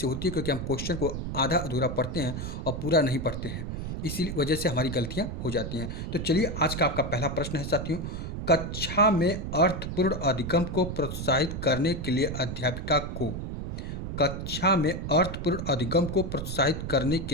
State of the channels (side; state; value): right; noise; rumble, 5 dB below the sound